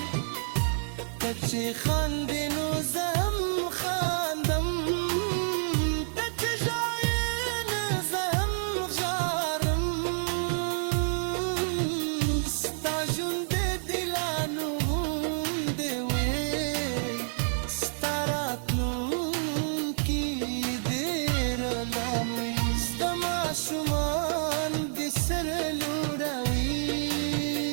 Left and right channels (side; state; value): left; silent; digital silence